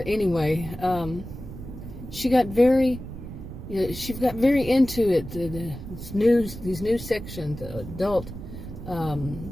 anyway, she got very into it, these new sections, adult,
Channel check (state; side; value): noise; right; rumble, 11 dB below the sound